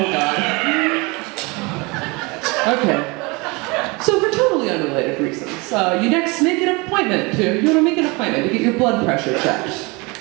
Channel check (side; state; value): left; quieter; 26.8 dB